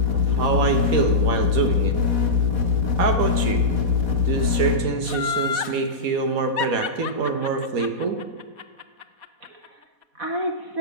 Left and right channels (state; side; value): late; left; 4.1 ms